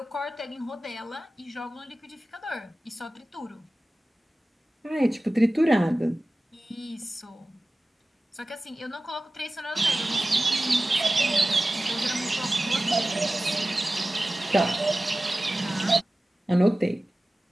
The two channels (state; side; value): normal; both; correlation 0.96